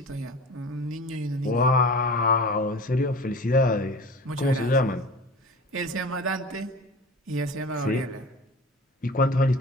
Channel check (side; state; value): both; normal; correlation 0.37